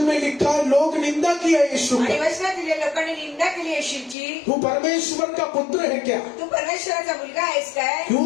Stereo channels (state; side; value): drops out; right; at 4.2 s